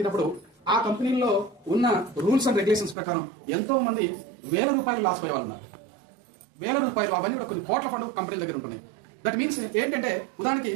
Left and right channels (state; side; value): drops out; left; at 3.0 s